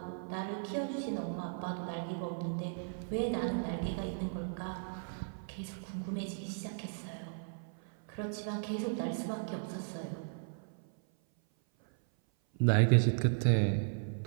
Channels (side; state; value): left; silent; 54 dB below the other